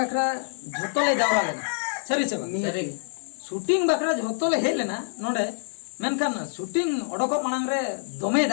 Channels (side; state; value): right; silent; 61 dB below the other